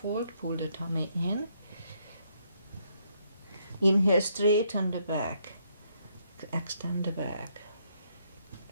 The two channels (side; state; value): both; inverted; correlation -0.72